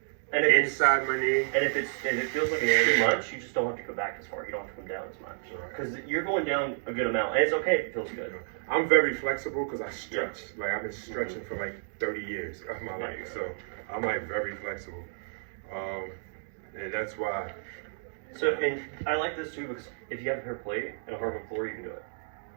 And if Inside my knee. And if it feels like it's too much, you just don't have to go back as far. You don't have to come down as much. Because you're going down a good amount, and it's okay if it feels good. I'm very flexible because I stretch. Like I've been stretching for like 30 years of my life, so I'm like very flexible, and that's why. So, and I like this too because if you have a paper plate and a hardwood floor, you can do it.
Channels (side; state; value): left; silent; digital silence